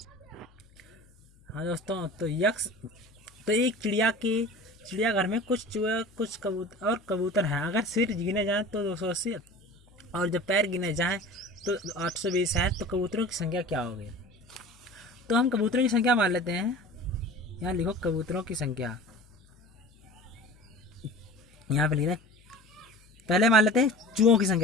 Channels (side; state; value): left; noise; hum, 29 dB below the sound